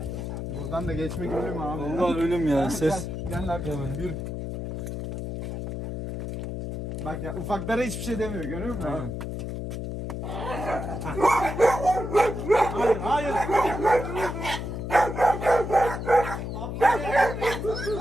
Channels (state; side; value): noise; left; hum, 5 dB below the sound